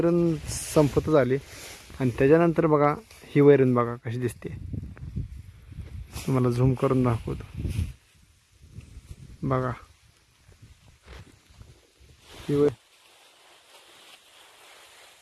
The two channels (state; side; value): identical; both; correlation 1.00